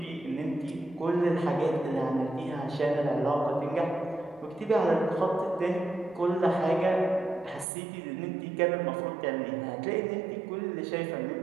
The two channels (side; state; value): left; drops out; at 7.7 s